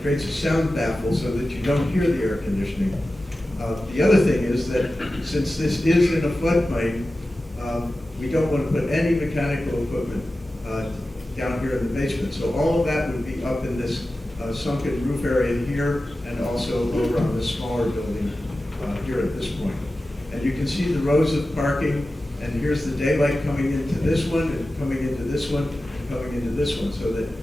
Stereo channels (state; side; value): normal; both; correlation 0.94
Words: creates a sound baffle so that you don't hear the air conditioning. The other thing is that since this is in a floodplain, we don't want to put any mechanical equipment down here in the basement. So all of that would be up in this sunken roof area here, and also over on this smaller building here at this point. And you can see the rows of parking, and here's the daylight coming into this one, and coming into this one, and coming into this one, so that,